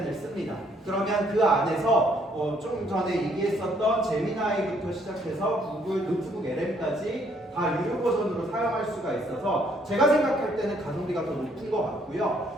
씁니다. 그러면 그 안에서 좀 전에 얘기했었던 제미나이부터 시작해서 구글 노트북 LM까지 다 유료 버전으로 사용할 수가 있어서 제가 생각할 때는 가성비가 더 높은 것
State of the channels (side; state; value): both; normal; correlation 0.67